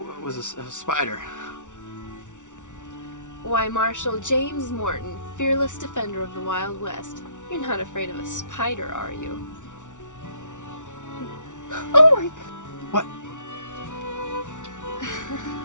was a spider. Why, Marshal James Morton, fearless defender of the Wild West. You're not afraid of a spider, are you? Oh my... What?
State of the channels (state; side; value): late; right; 0.86 ms